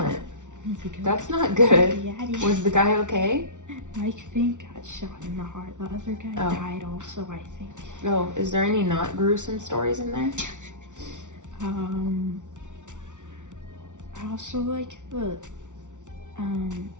That's not Yeah, good. it is. Was the guy okay? Mike Fink got shot in the heart. The other guy died also, I think. Oh, is there any not gruesome stories in there? I also like the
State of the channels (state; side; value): late; left; 0.86 ms